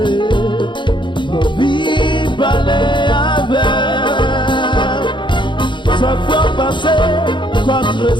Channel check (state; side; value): late; right; 0.23 ms